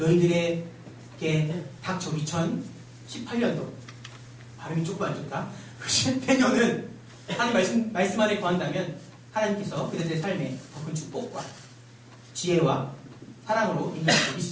닥쳐 2018년도 발음이 조금 안 좋다. 내년은 하나님 말씀 안에 거한다면 하나님께서 그들의 삶에 더 큰 축복과 지혜와 사랑으로 인도하실 수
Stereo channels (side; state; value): both; identical; correlation 1.00